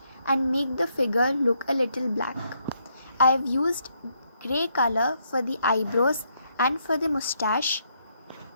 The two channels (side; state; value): both; inverted; correlation -0.75